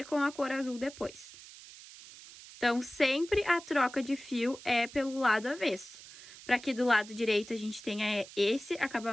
com a cor azul depois. Então, sempre a troca de fio é pelo lado avesso. Para aqui do lado direito a gente tenha esse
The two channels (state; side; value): noise; right; hiss, 17 dB below the sound